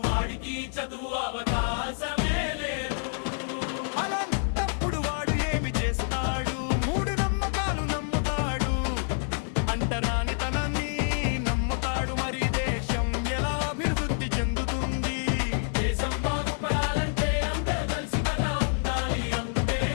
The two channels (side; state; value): right; silent; 60 dB below the other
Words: వాడికి చదువు అవకాశమే లేదు. అలాంటప్పుడు వాడు ఏమి చేస్తాడు? 3 నమ్మకాలు నమ్ముతాడు, అంటరానితనాన్ని నమ్ముతాడు. మరి దేశం ఎలా అభివృద్ధి చెందుతుంది? దేశం బాగుపడాలంటే అందరూ కలిసి కదా ఉండాలి. అంతే